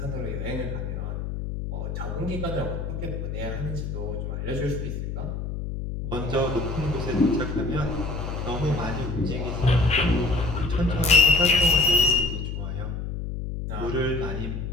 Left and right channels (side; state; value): left; noise; hum, 5 dB below the sound